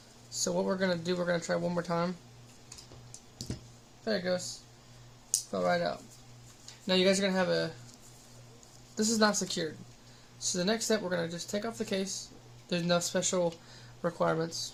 So what we're going to do, we're going to try one more time. There it goes. Fell right out. Now you guys are going to have this is not secured. So the next step, we're going to just take off the case. There's no special requirements.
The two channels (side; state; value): both; identical; correlation 1.00